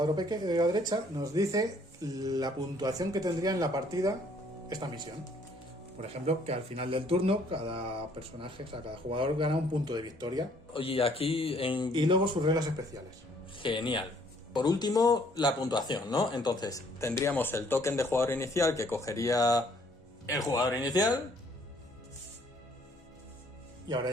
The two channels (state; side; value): normal; both; correlation 0.62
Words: pequeño de la derecha, nos dice la puntuación que tendría en la partida esta misión. Por ejemplo, que al final del turno cada personaje, o sea, cada jugador gana un punto de victoria. Oye, aquí en... Y luego sus reglas especiales. Genial. Por último, la puntuación, ¿no? Entonces, tendríamos el token de jugador inicial que cogería el jugador inicial. Y ahora